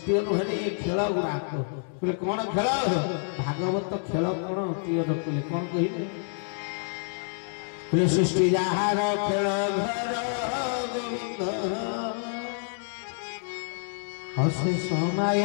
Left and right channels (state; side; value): silent; right; 60 dB below the other